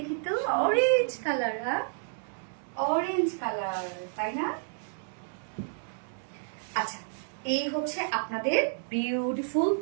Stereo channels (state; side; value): silent; left; digital silence